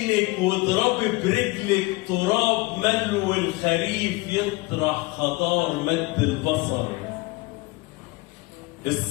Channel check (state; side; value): quieter; right; 22.9 dB